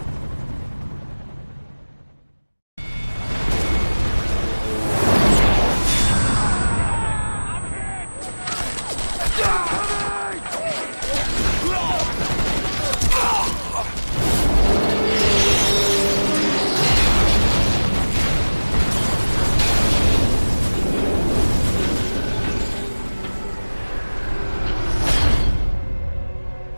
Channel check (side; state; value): both; inverted; correlation -1.00